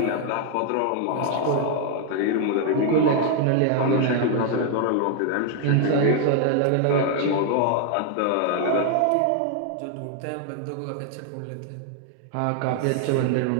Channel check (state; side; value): different; both; correlation 0.00